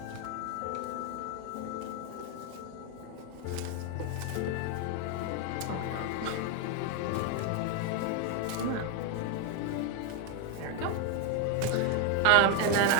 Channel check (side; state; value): both; different; correlation 0.01